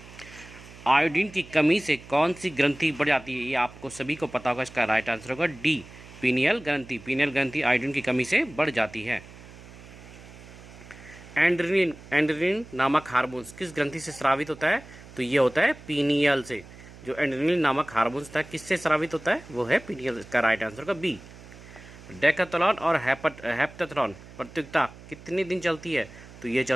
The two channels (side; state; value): right; noise; hum, 18 dB below the sound